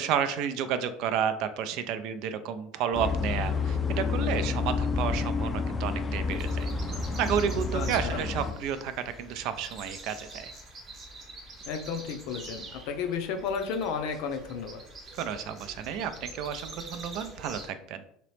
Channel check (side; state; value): both; normal; correlation 0.44